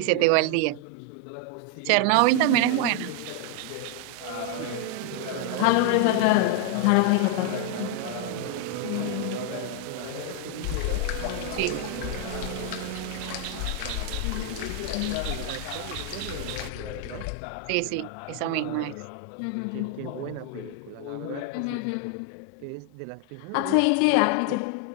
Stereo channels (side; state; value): both; different; correlation 0.00